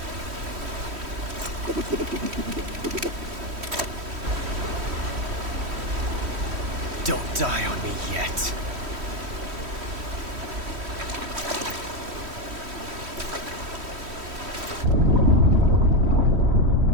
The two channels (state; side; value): late; left; 3.1 ms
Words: Don't die on me yet.